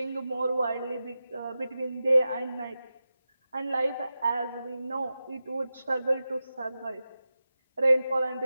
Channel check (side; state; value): both; inverted; correlation -0.93